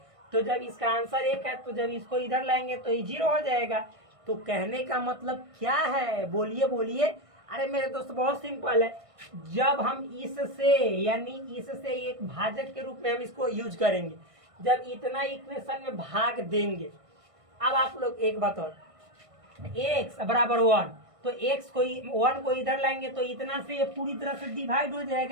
तो जब इसका आंसर 1 है तो जब इसको इधर लाएंगे तो ये 0 हो जाएगा। तो कहने का मतलब क्या है, बोलिए बोलिए। अरे मेरे दोस्त बहुत सिंपल है, जब हम इससे यानी इससे एक भाजक के रूप में हम इसको यूज करेंगे, जब इतना इक्वेशन में भाग देंगे। अब आप लोग एक बताओ, x बराबर 1 तो x को 1 को इधर लाएंगे तो इतना से ये पूरी तरह से डिवाइड हो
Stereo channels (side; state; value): left; late; 1.6 ms